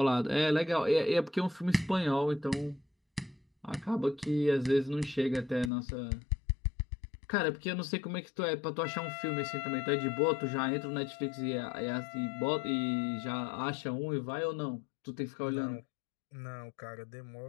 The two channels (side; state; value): right; drops out; at 5.7 s